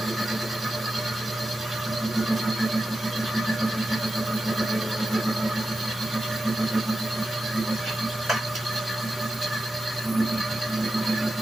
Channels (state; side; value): normal; both; correlation 0.91